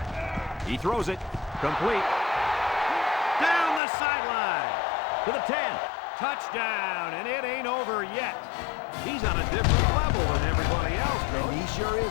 He throws it. Complete. Down the sideline. To the 10. Touchdown, and it ain't over yet. He's on a different level than everybody else, though. And he sure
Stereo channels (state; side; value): drops out; right; at 3.8 s